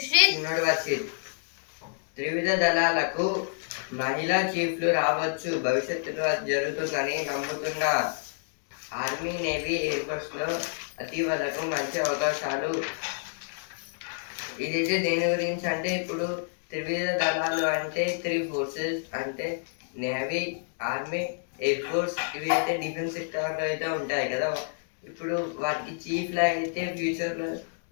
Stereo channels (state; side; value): silent; right; digital silence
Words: త్రివిధ దళాలకు మహిళా చీఫ్లు రావచ్చు, భవిష్యత్తులో జరుగుతుందని నమ్ముతున్న ఆర్మీ, నేవీ, ఎయిర్ ఫోర్స్ లో అతివలకు మంచి అవకాశాలు. ఇదైతే దేని గురించి అంటే, ఇప్పుడు త్రివిధ దళాలు అంటే 3 ఫోర్సెస్ అంటే నేవీ, ఆర్మీ, ఎయిర్ ఫోర్స్. ఇవి అయితే డిఫెన్స్ సెక్టార్లో అయితే ఉంటాయి కదా. ఇప్పుడు వాటికి చీఫ్లా అయితే ఫ్యూచర్లో